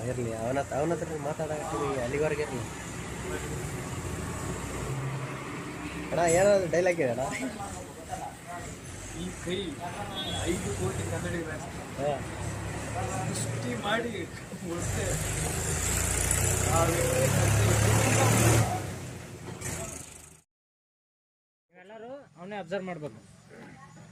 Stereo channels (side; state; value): both; identical; correlation 1.00